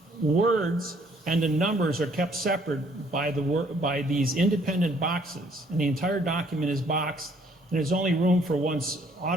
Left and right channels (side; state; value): both; normal; correlation 0.63